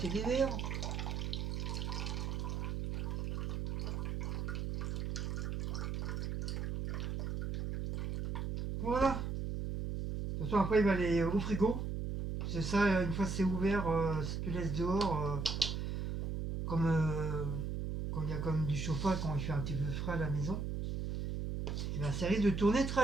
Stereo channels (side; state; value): right; noise; hum, 2 dB below the sound